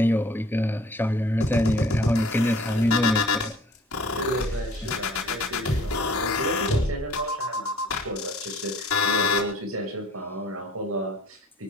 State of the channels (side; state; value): both; normal; correlation 0.53